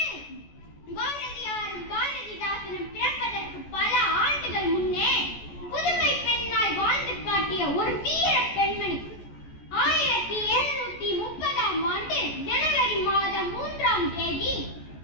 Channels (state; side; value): late; right; 14 ms